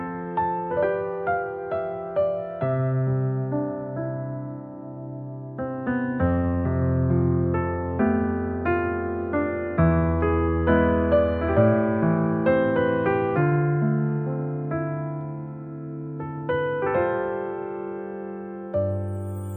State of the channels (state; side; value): identical; both; correlation 1.00